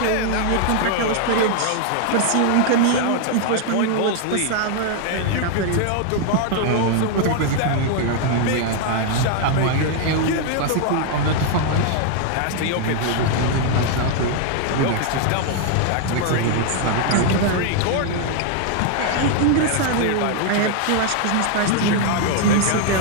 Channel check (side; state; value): both; different; correlation 0.00